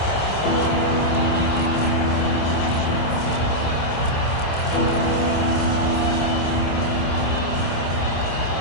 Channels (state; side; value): late; right; 27 ms